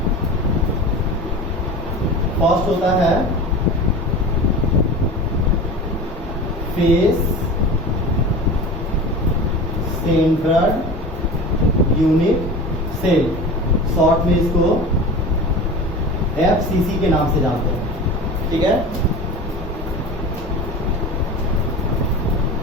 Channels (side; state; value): both; normal; correlation 0.33